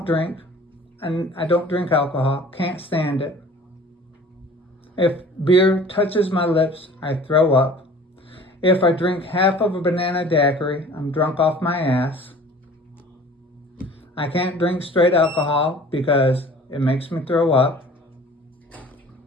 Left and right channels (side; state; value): both; normal; correlation 0.47